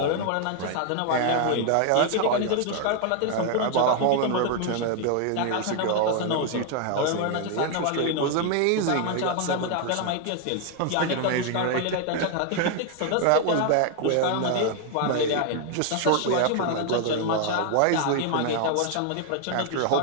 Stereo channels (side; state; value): both; different; correlation 0.00